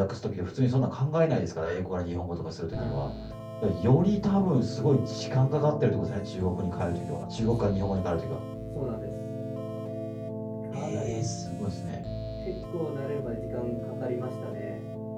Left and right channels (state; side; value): identical; both; correlation 1.00